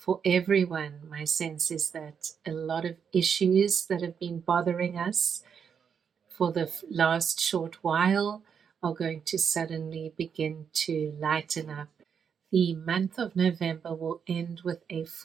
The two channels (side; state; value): left; quieter; 7.0 dB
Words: everyone, my sense is that a lot of issues that have been bothering us for the last short while are going to suddenly begin to lighten up. The month of November will end with a